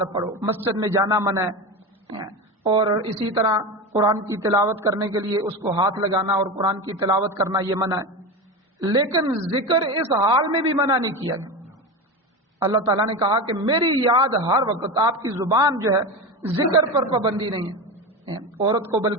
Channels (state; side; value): normal; both; correlation 0.22